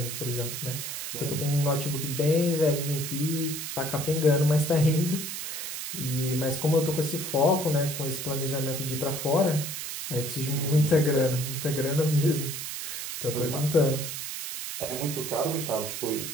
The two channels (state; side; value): noise; right; hiss, 6 dB below the sound